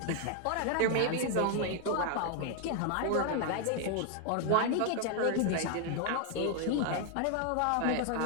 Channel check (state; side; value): different; both; correlation 0.00